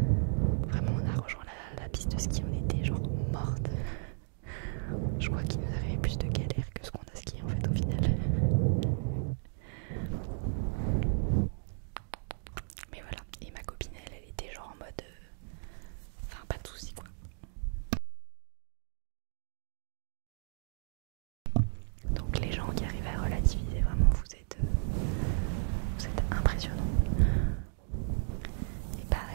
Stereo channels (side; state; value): left; silent; digital silence